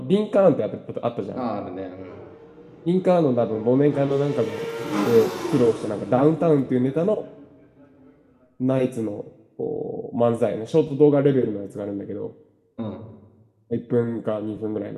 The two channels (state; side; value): identical; both; correlation 1.00